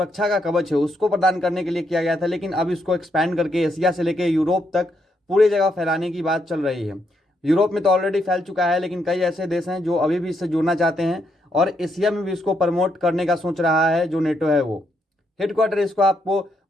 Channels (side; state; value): both; normal; correlation 0.77